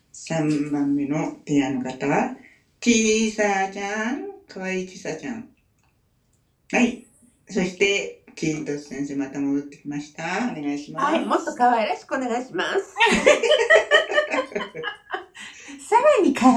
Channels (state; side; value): identical; both; correlation 1.00